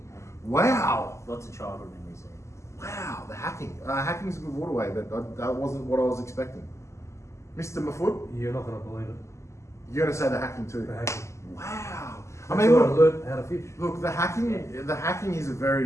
Wow. Lots of childhood memories there. Wow, the hacking. Hacking's a good waterway, but that wasn't what I was expecting. Mr. Mafood, You're not going to believe it. you're going to say the hacking too. The hacking. Wow. I That's mean, where I look, learned how to fish. the hacking is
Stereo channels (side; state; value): right; late; 0.13 ms